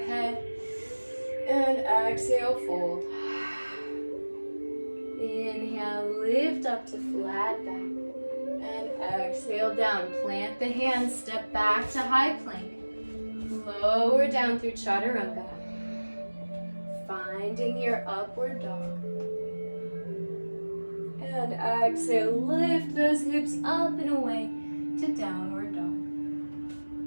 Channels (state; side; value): inverted; both; correlation -1.00